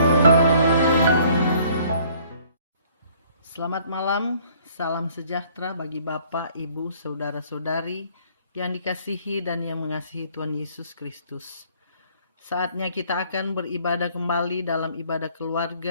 malam, salam sejahtera bagi Bapak, Ibu, Saudara-saudari yang dikasihi dan yang mengasihi Tuhan Yesus Kristus. Saatnya kita akan beribadah kembali dalam ibadah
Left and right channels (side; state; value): both; inverted; correlation -0.59